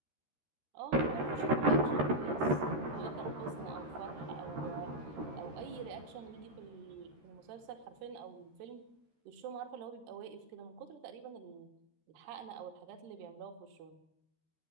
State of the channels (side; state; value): left; late; 13 ms